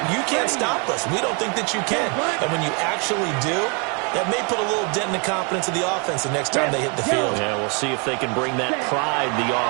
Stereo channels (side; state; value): left; quieter; 34.7 dB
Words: you can't stop us. We don't think that you can. And when you actually do, that may put a little dent in the confidence of the offense the next time they hit the field. Yeah, we'll see if they can bring that pride the